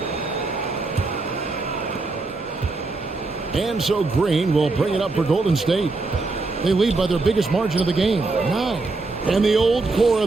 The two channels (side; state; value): left; quieter; 3.6 dB